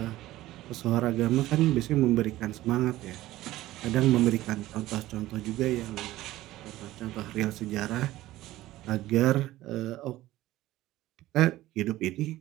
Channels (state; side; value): quieter; left; 16.1 dB